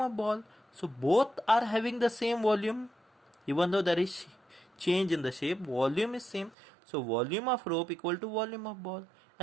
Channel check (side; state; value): left; drops out; at 6.6 s